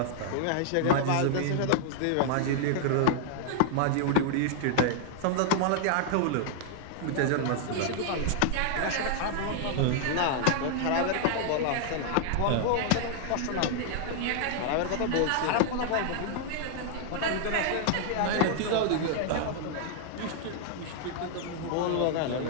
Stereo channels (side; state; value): both; different; correlation -0.01